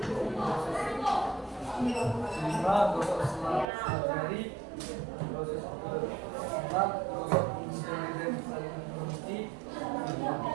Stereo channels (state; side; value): drops out; left; at 3.7 s